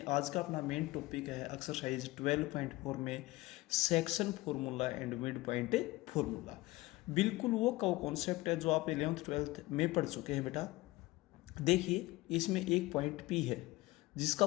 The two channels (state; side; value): quieter; right; 19.8 dB